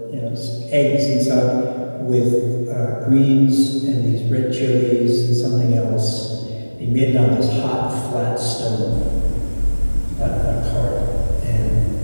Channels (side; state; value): both; inverted; correlation -1.00